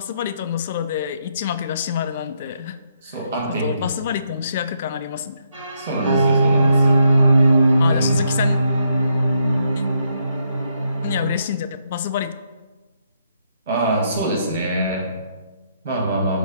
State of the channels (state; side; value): inverted; both; correlation -0.76